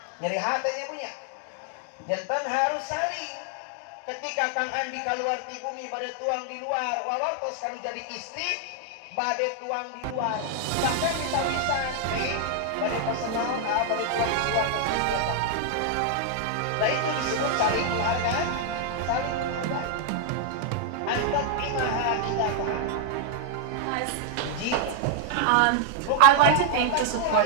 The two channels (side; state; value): both; different; correlation 0.00